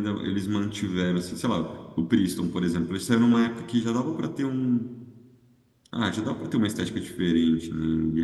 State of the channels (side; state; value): both; identical; correlation 1.00